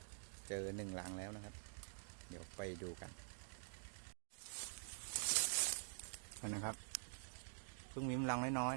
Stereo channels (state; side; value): silent; left; digital silence